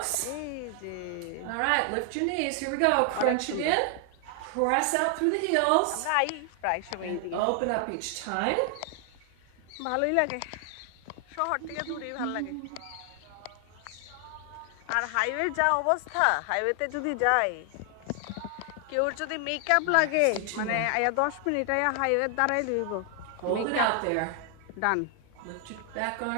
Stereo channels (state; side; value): different; both; correlation 0.00